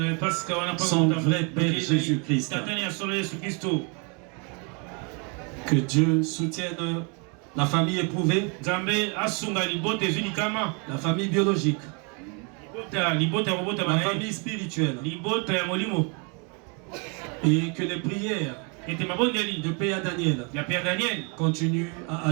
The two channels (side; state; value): left; quieter; 34.6 dB